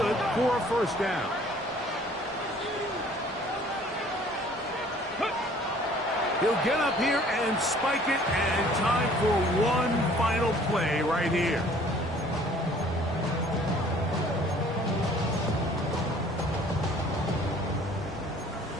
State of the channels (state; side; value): normal; both; correlation 0.54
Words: for a first down. He'll get up here and spike it, and time for one final play right here.